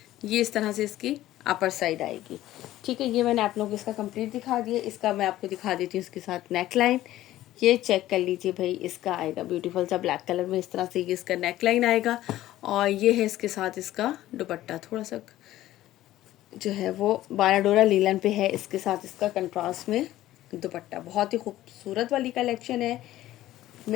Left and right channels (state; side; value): quieter; right; 14.7 dB